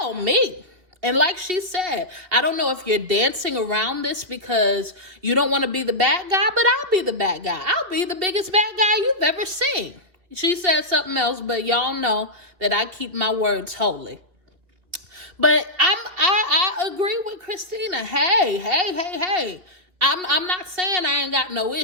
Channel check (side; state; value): left; late; 2.5 ms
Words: me. And like she said, I don't know if you're dancing around this because you don't want to be the bad guy, but I'll be the bad guy. I'll be the biggest bad guy you've ever seen. She said something else, but y'all know that I keep my words holy. But I agree with Christina. Hey. I'm not saying I ain't got no